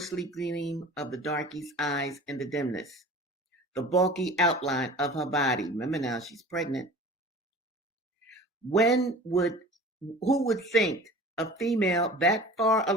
gleam of the darkie's eyes in the dimness, the bulky outline of her body. Remember now, she's pregnant. When would Who would think a female that far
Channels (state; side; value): normal; both; correlation 0.40